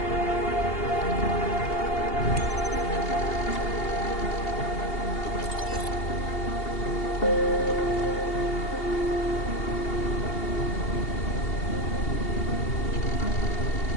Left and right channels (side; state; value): right; late; 2.8 ms